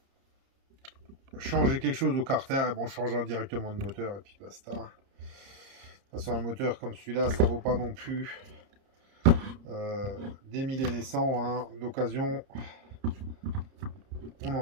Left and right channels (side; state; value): left; late; 30 ms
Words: quelque chose au carter, et bon, on changera directement de moteur et puis basta. De toute façon, un moteur comme celui-là, ça vaut pas non plus des 1000 et des 100. Hein. D'occasion, on en